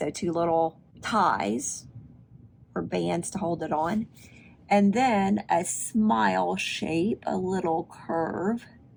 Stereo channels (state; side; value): identical; both; correlation 1.00